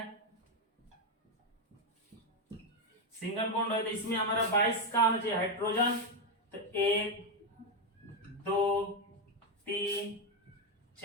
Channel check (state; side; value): normal; both; correlation 0.06